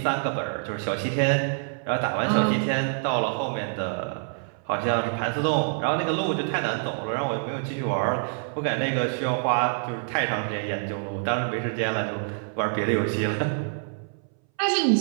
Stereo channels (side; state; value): left; silent; 61 dB below the other